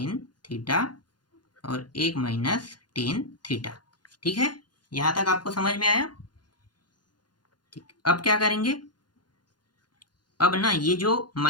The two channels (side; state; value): right; late; 0.70 ms